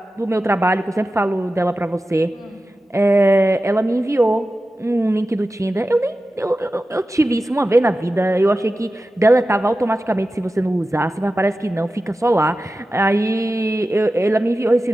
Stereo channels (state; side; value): normal; both; correlation 0.93